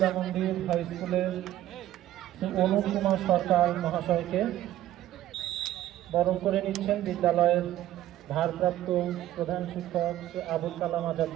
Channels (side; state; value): left; quieter; 13.6 dB